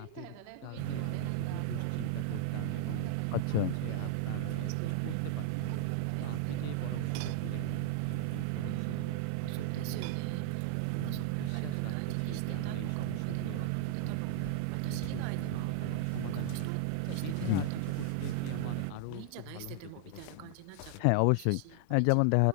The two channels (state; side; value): different; both; correlation 0.00